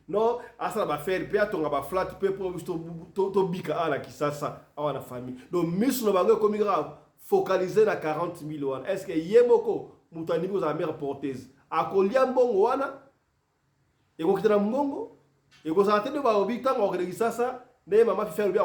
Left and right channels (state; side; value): identical; both; correlation 1.00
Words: non asa ba faire pe atonga ba flat pe pour to bika ala ki sasa awana famille donc misu no bango comme grave focaliser na 40 000 wana est-ce que yemoko mutani ko za mère porteuse akolia mbongo wana eko kitana mbongo eko sa tende ba obi tanga ko ki sasa ne mama fi faire bi